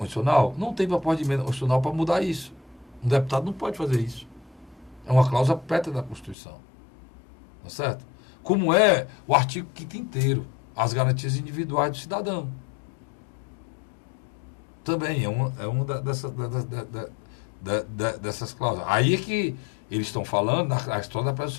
Não tem proposta de emenda constitucional para mudar isso. Um deputado não pode fazer isso. É uma cláusula pétrea da Constituição. Tá certo? Como é o artigo 5º inteiro, as garantias individuais do cidadão. Também é uma dessas cláusulas. Aí é que eles estão falando a história da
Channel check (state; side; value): drops out; right; at 6.4 s